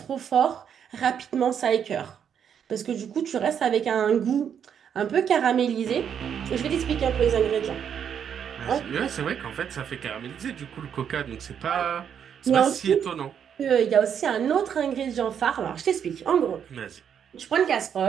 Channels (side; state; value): left; quieter; 8.2 dB